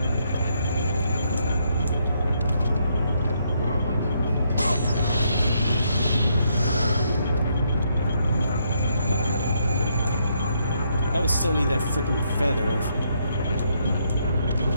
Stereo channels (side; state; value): both; inverted; correlation -0.75